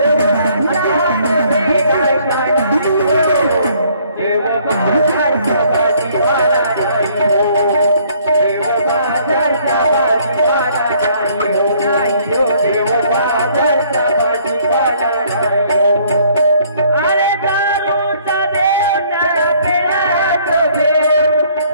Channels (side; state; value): both; inverted; correlation -0.62